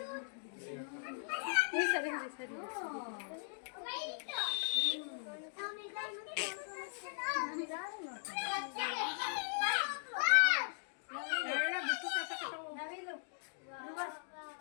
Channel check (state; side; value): silent; right; digital silence